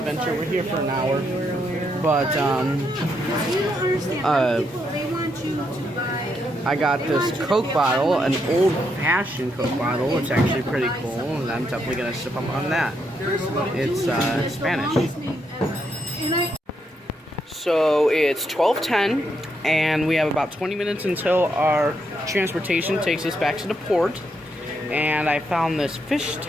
We're here for an hour, but I got this Coke bottle, an old-fashioned Coke bottle. It's actually pretty cool, and I'm definitely gonna sip up on that. It's Spanish. So it's 12:10, and we have about 20 minutes until our transportation takes us back to the port. And I found this fish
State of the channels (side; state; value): both; normal; correlation 0.78